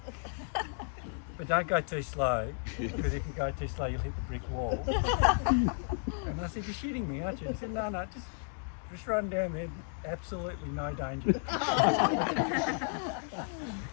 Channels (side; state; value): right; silent; 56 dB below the other